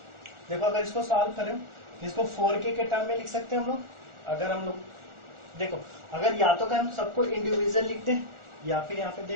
देखो अगर इसको सॉल्व करें तो इसको 4k के टर्म में लिख सकते हैं हम लोग। अगर हम लोग देखो, अगर या तो हम सबको इंडिविजुअल लिखते हैं, या फिर यहाँ पे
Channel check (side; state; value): left; late; 1.4 ms